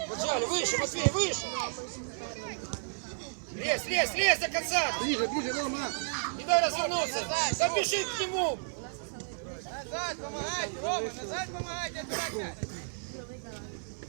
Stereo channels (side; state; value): left; silent; digital silence